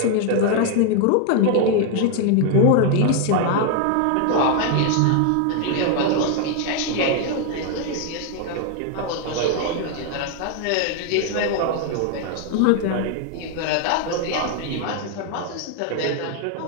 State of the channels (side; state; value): both; different; correlation 0.00